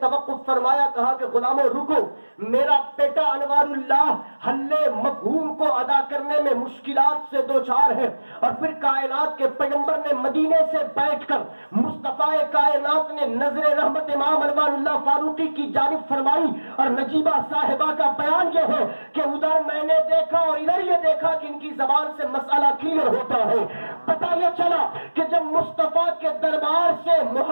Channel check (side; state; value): both; inverted; correlation -1.00